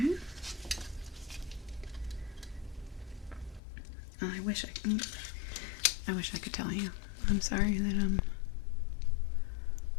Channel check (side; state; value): right; drops out; at 3.6 s